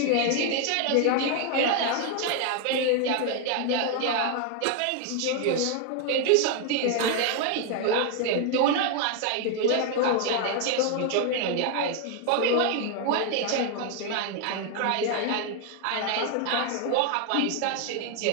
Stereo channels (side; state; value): both; different; correlation 0.01